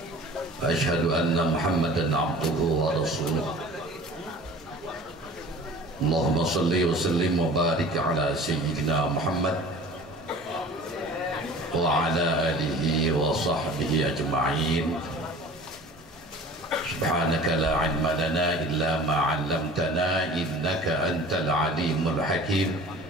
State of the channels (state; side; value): normal; both; correlation 0.43